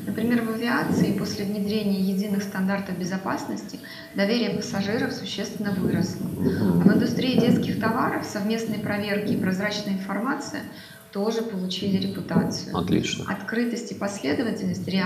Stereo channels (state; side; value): identical; both; correlation 1.00